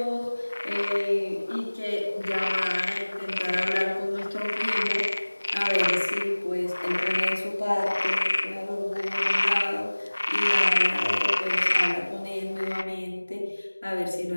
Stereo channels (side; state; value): both; inverted; correlation -1.00